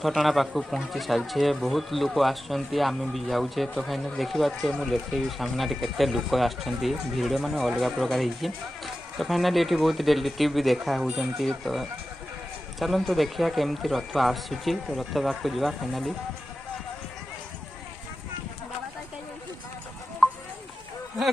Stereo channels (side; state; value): both; normal; correlation 0.93